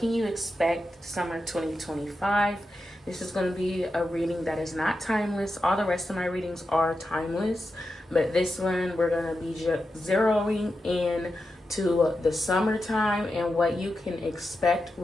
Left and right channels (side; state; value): both; normal; correlation 0.89